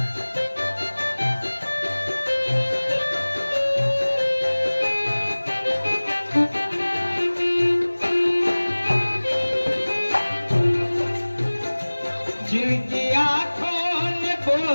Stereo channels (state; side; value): inverted; both; correlation -1.00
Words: जिनकी आंखों ने